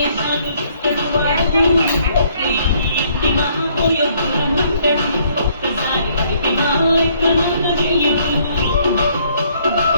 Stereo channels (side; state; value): both; inverted; correlation -0.65